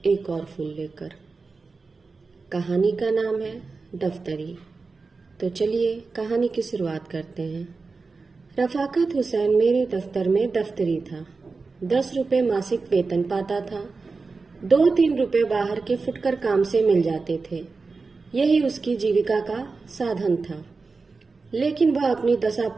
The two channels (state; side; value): quieter; left; 4.2 dB